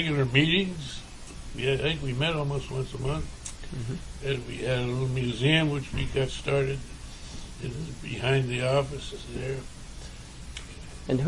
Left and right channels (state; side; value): identical; both; correlation 1.00